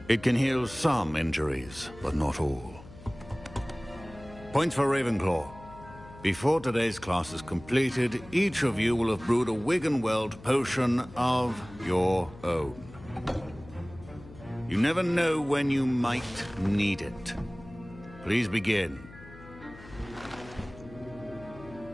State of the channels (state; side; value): noise; left; hum, 18 dB below the sound